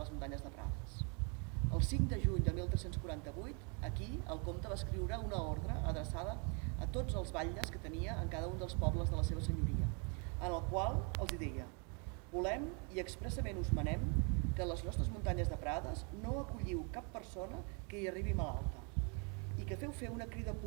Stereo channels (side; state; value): left; quieter; 35.8 dB